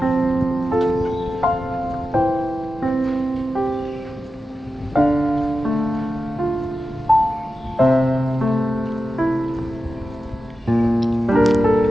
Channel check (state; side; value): normal; both; correlation 0.92